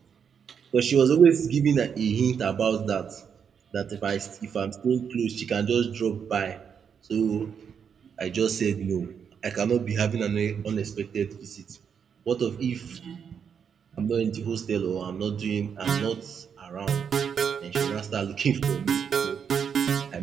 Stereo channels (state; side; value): quieter; left; 7.2 dB